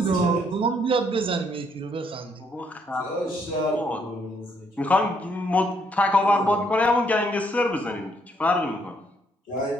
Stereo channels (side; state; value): both; normal; correlation 0.71